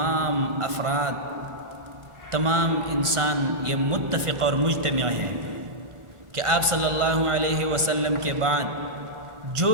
افراد، تمام انسان یہ متفق اور مجتمع ہے کہ آپ صلی اللہ علیہ وسلم کے بعد جو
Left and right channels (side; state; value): left; late; 1.5 ms